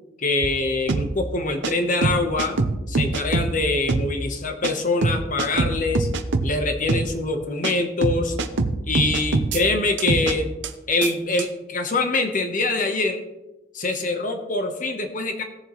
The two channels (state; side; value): normal; both; correlation 0.41